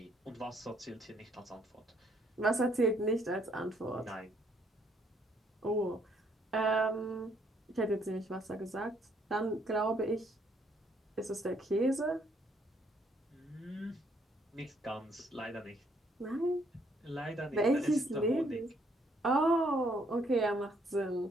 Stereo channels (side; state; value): both; normal; correlation 0.68